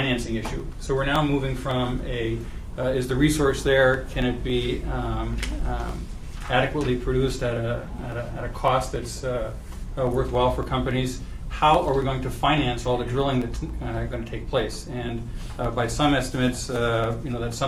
issue. So we're now moving from is the resource there? Can it be adequately produced at a cost that's worthwhile for companies? How are we going to finance all the drilling that's going to take place? And by some estimates, that's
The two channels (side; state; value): both; identical; correlation 1.00